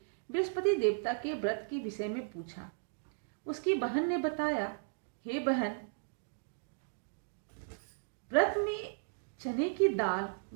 बृहस्पति देवता के व्रत के विषय में पूछा। उसकी बहन ने बताया, हे बहन, व्रत में चने की दाल,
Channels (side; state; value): left; silent; digital silence